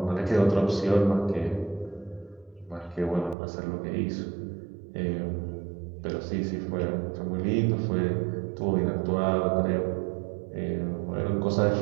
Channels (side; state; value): left; drops out; at 3.4 s